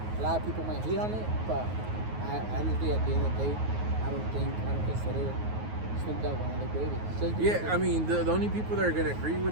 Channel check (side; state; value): left; late; 9.4 ms